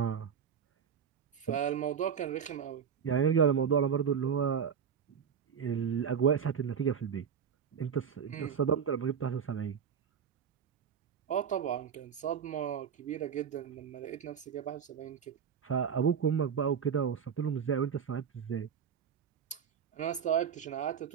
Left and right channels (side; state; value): left; quieter; 7.5 dB